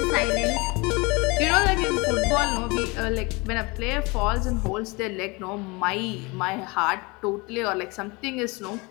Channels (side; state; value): right; quieter; 26.4 dB